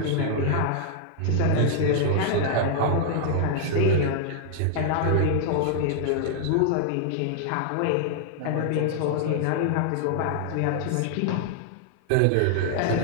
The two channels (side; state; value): both; different; correlation 0.00